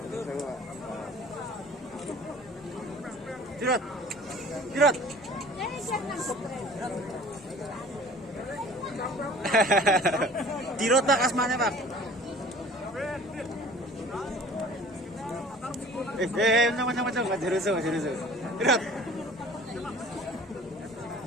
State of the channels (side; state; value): both; normal; correlation 0.47